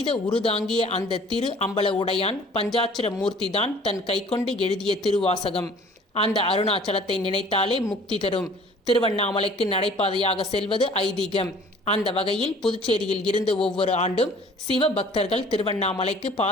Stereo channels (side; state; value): both; normal; correlation 0.51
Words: உருதாங்கிய அந்த திரு அம்பல உடையான் பஞ்சாட்சர மூர்த்திதான் தன் கைக்கொண்டு எழுதிய திருவாசகம். அந்த அருணாச்சலத்தை நினைத்தாலே முக்தி தரும். திருவண்ணாமலைக்கு நடைபாதையாக செல்வது ஐதீகம். அந்த வகையில் புதுச்சேரியில் இருந்து ஒவ்வொரு ஆண்டும் சிவ பக்தர்கள் திருவண்ணாமலைக்கு